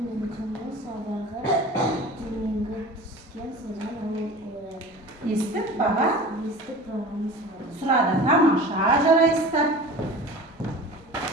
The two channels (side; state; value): both; normal; correlation 0.37